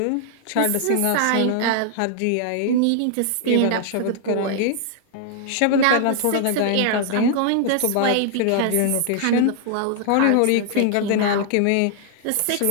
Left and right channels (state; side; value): different; both; correlation 0.00